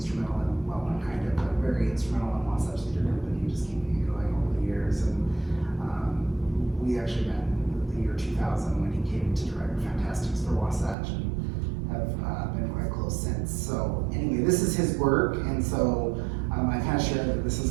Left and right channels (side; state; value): left; drops out; at 11.0 s